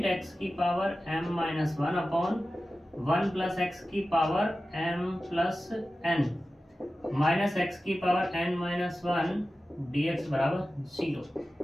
x की power m minus one upon one plus x की power m plus n minus x की power n minus one dx बराबर 0।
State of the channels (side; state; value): both; normal; correlation 0.94